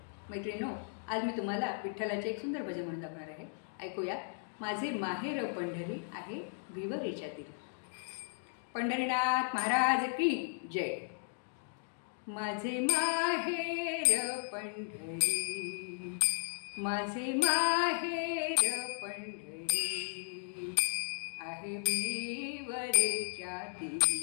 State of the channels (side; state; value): right; silent; digital silence